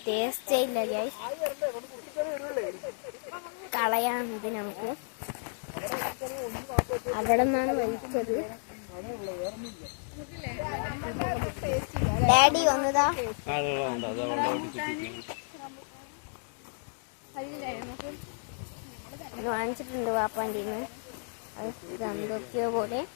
ടേസ്റ്റേ ഇല്ല ഗ്യാസ്. കളയാം ഇത് നമുക്ക്. അവിടെ നിന്നാണ് വലിച്ചത്. ഡാഡി ഒന്നതാ വാങ്ങിച്ചിട്ടുണ്ട് വാപ്പാൻ്റെ. ഇത് എന്തൊക്കെയോ പോലെ.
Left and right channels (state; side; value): silent; right; digital silence